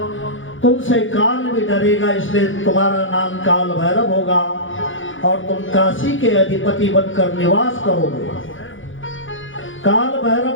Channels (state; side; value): late; right; 0.57 ms